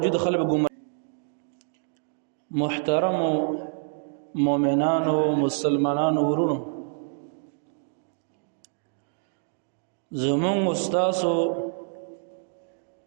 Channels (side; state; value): left; silent; digital silence